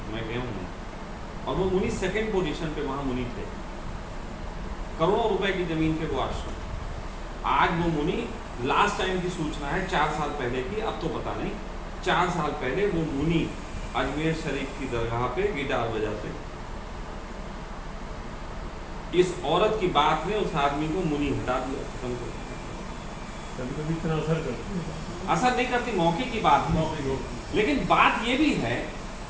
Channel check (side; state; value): both; identical; correlation 1.00